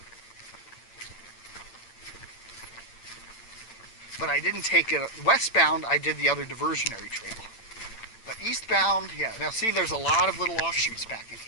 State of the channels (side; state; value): right; late; 8.8 ms